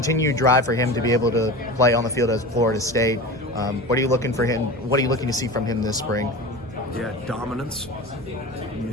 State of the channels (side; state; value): both; normal; correlation 0.31